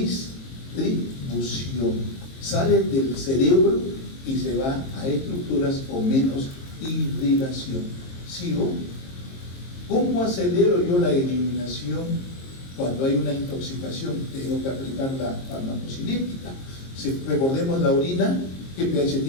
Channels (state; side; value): late; right; 22 ms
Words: Sale del cerebro y se va a estructuras con menos irrigación. ¿Sigo? ¿Cómo acelero yo la eliminación cuando hay una intoxicación? Tengo que aplicar la farmacocinética. Si recordemos la orina, ¿qué pH